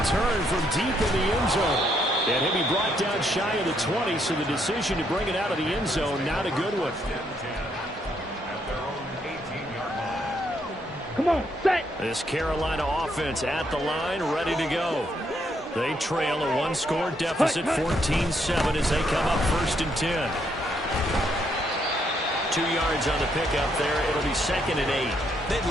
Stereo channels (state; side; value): normal; both; correlation 0.74